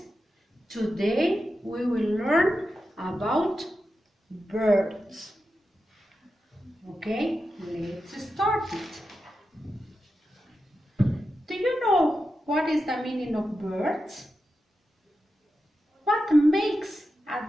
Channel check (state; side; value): normal; both; correlation 0.90